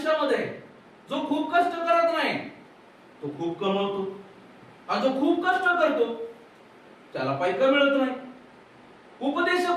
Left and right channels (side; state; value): both; identical; correlation 1.00